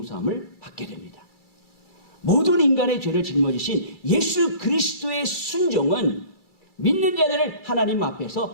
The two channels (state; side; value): late; right; 2.3 ms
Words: 받게 됩니다. 모든 인간의 죄를 짊어지신 예수 그리스도의 순종은 믿는 자들을 하나님